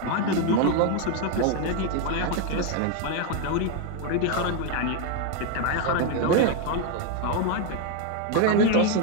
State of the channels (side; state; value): both; different; correlation 0.01